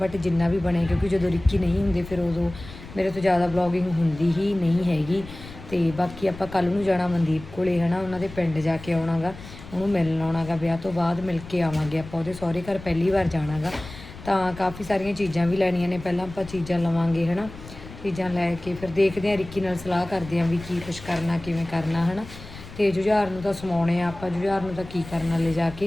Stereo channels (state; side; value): noise; left; rumble, 15 dB below the sound